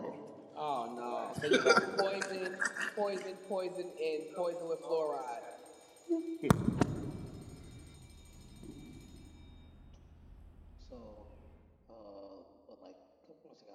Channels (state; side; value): identical; both; correlation 1.00